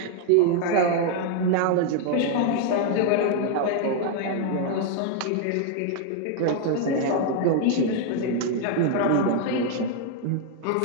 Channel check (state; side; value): different; both; correlation 0.00